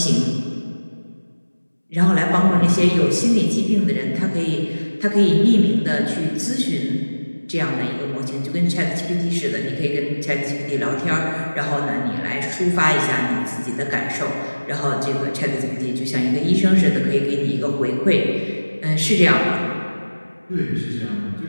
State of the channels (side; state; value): both; inverted; correlation -1.00